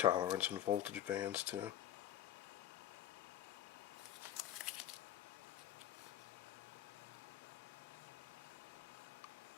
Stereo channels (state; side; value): quieter; right; 11.4 dB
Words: and voltage bands too.